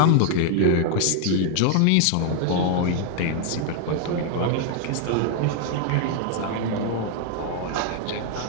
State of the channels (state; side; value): different; both; correlation 0.00